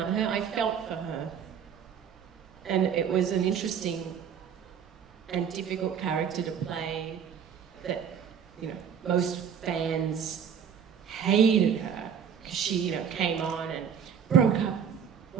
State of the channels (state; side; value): quieter; left; 7.7 dB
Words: her. I felt for her. And it was an interesting and difficult character to play that, you know, most fans hated her because she, came on and broke up,